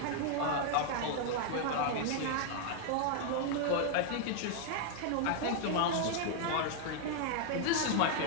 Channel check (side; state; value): both; different; correlation 0.00